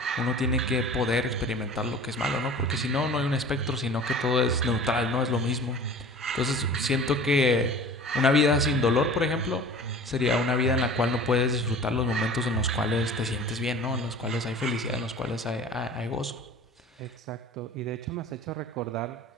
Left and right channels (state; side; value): normal; both; correlation 0.42